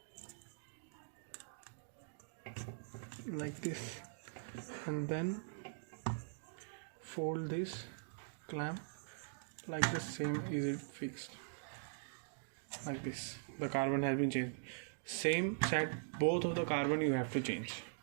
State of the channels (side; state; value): left; silent; digital silence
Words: like this, and then fold this clamp like the same. Is it fixed like this? The carbon has been changed. Same set, both of the carbon you have to change,